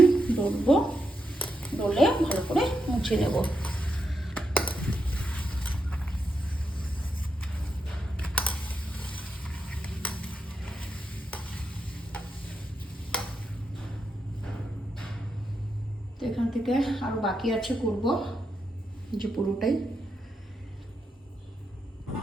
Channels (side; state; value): both; normal; correlation 0.84